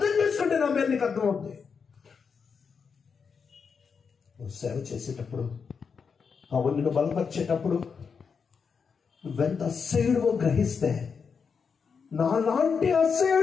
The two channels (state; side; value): quieter; right; 5.9 dB